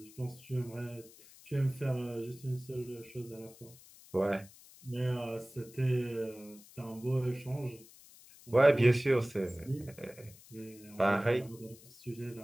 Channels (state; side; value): noise; left; hiss, 22 dB below the sound